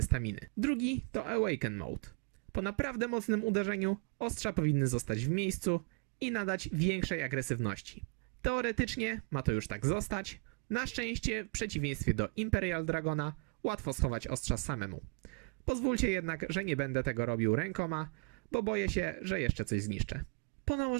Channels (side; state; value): left; quieter; 34.4 dB